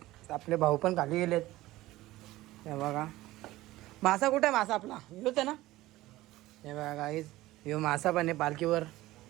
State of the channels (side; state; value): left; quieter; 17.2 dB